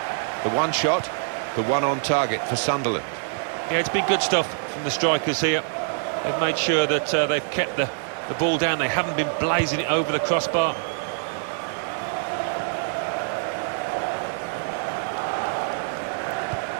The one shot, the one on target for Sunderland. Yeah, it's been good stuff from the strikers here. They've made sure that they've kept the ball down. They haven't been blazing it over the crossbar.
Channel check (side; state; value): left; silent; digital silence